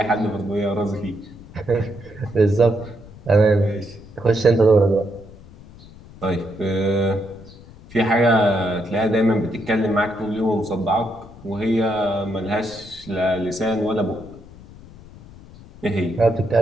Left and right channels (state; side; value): noise; left; rumble, 20 dB below the sound